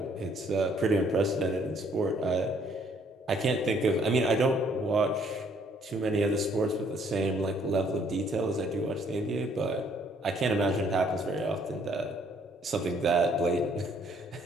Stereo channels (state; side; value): normal; both; correlation 0.64